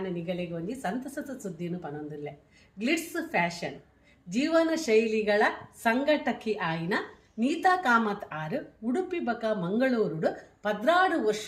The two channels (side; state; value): both; identical; correlation 1.00